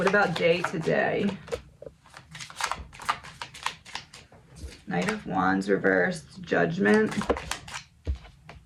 about day to day? Knight of Wands reversed, Judgment.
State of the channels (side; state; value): both; identical; correlation 1.00